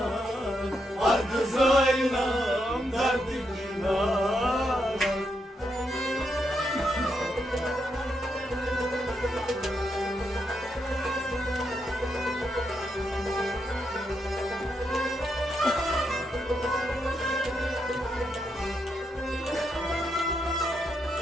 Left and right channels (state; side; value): normal; both; correlation 0.81